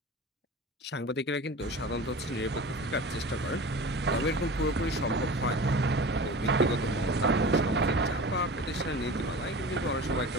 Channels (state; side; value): normal; both; correlation 0.35